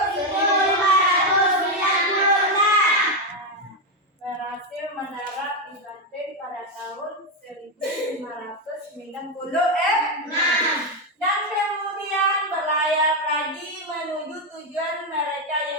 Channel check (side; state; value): both; normal; correlation 0.07